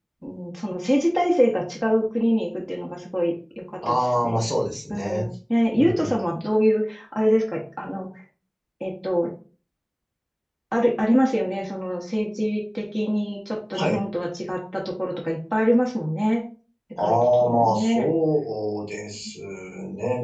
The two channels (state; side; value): identical; both; correlation 1.00